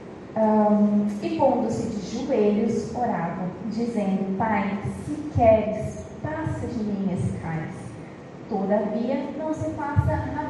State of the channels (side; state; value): both; identical; correlation 1.00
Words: E pondo-se de joelhos, orava, dizendo, Pai, se queres, passa de mim esse cálice. Todavia, não se faça